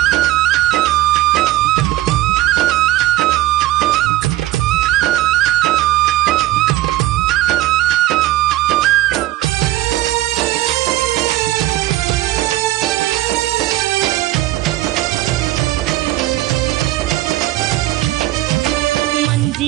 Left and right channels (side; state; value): left; quieter; 16.2 dB